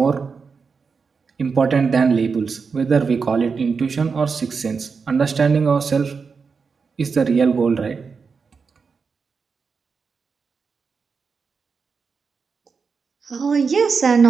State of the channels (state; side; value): quieter; left; 5.3 dB